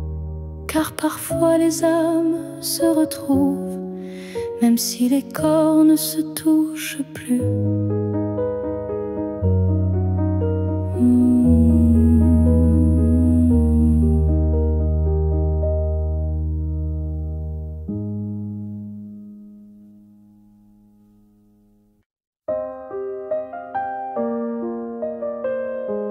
Car parfois les âmes se retrouvent, même si les corps ne se touchent plus.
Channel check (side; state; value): both; identical; correlation 1.00